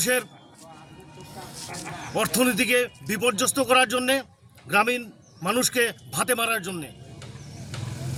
অর্থনীতিকে বিপর্যস্ত করার জন্যে, গ্রামীণ মানুষকে ভাতে মারার জন্যে।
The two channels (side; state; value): both; identical; correlation 1.00